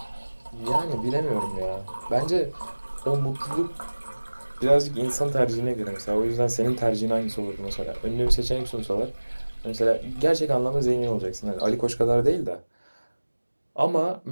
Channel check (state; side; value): inverted; both; correlation -1.00